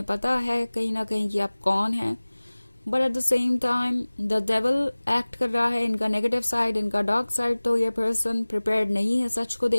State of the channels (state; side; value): inverted; both; correlation -1.00